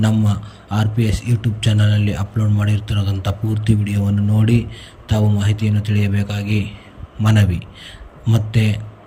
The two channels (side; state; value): both; identical; correlation 1.00